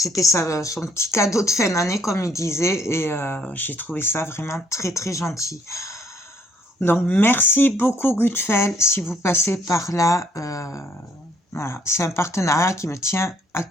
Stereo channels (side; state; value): both; normal; correlation 0.66